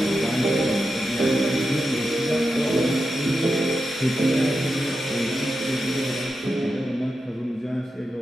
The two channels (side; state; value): both; normal; correlation 0.89